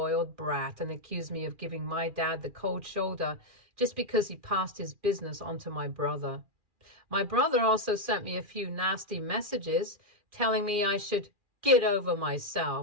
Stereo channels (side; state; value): left; late; 2.4 ms